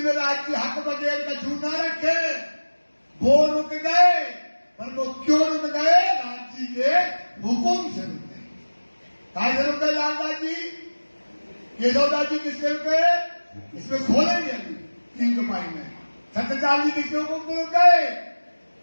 में राज की हक बगैर का छू ना रखे, वो रुक गए। पर वो क्यों रुक गए? राज जी के हुक्म से रुक गए। कहा से रुक गए लाला जी? केशवदास जी किससे रुक गए? इसमें खोलेंगे अभी 3 कमाई में। सत्यपाल जी किसके हुक्म से रुक गए?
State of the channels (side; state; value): both; inverted; correlation -1.00